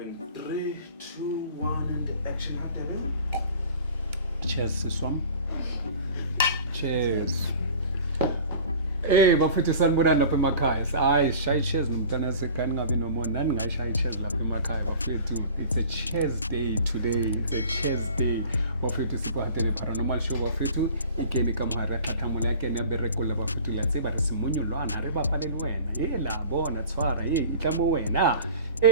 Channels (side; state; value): both; inverted; correlation -0.42